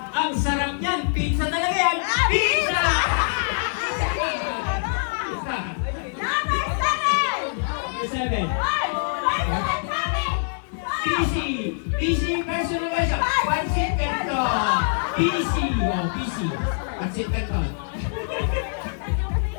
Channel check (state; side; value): silent; right; 62 dB below the other